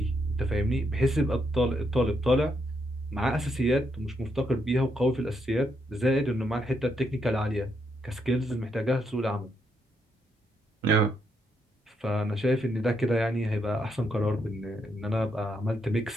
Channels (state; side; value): normal; both; correlation 0.78